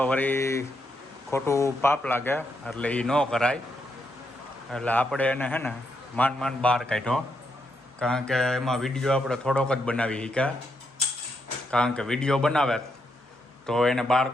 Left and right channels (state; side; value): normal; both; correlation 0.80